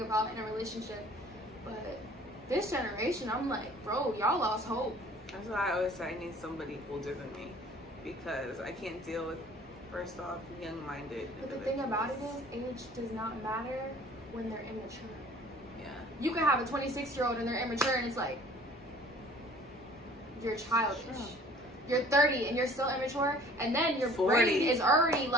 about in a relationship. But this generation, I'm like, bro, y'all lost hope. That's why I always say I need somebody older than me, because I can't deal with, first off, young-minded. But the thing about it is, age does not matter when they're immature. Yeah. You can have a 26-year-old and they're immature, and it's like, you're childish. Sure. You're 30 and you're still immature, and then your 40. brain is already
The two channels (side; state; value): both; normal; correlation 0.51